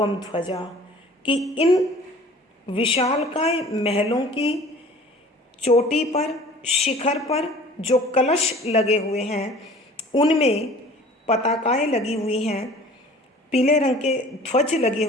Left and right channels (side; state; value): both; normal; correlation 0.47